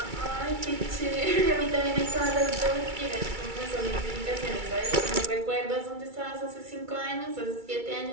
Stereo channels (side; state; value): left; late; 2.3 ms